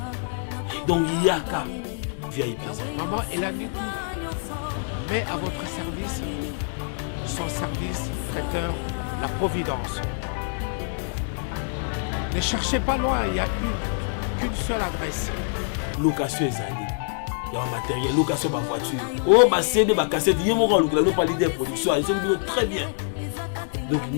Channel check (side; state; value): right; silent; 58 dB below the other